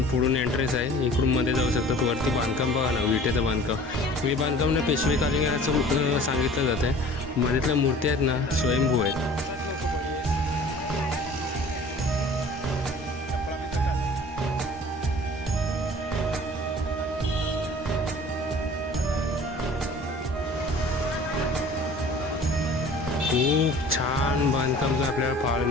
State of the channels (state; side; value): normal; both; correlation 0.46